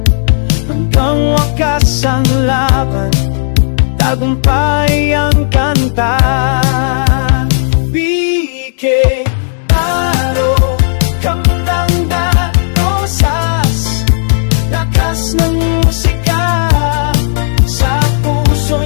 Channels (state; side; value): silent; right; digital silence